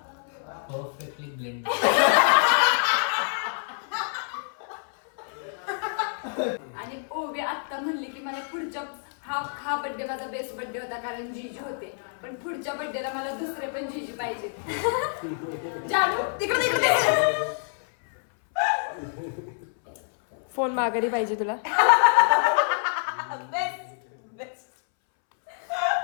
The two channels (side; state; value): right; silent; 60 dB below the other